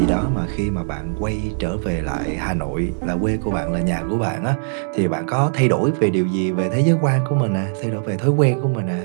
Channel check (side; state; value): left; silent; digital silence